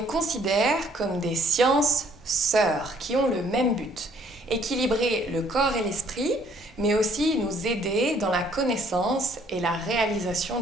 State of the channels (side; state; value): both; normal; correlation 0.62